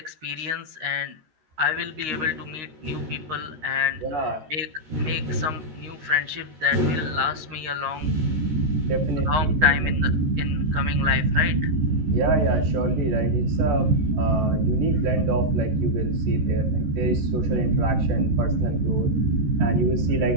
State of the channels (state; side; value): late; left; 13 ms